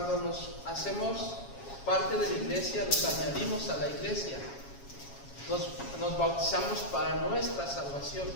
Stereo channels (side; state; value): right; late; 7.3 ms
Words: nos hacemos parte de la iglesia, nos añadimos a la iglesia, nos bautizamos para nuestra salvación,